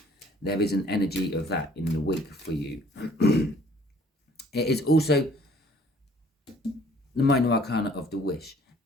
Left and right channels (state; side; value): normal; both; correlation 0.57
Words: there is an energy of that in the week for you. It is also the minor arcana of the wish.